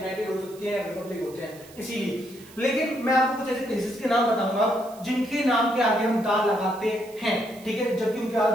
हो सकते हैं, रिपब्लिक होते हैं, इसीलिए। लेकिन मैं आपको कुछ ऐसे प्लेसेस के नाम बताऊंगा जिनके नाम के आगे हम दा लगाते हैं, ठीक है, जबकि उनके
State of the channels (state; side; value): noise; right; hiss, 22 dB below the sound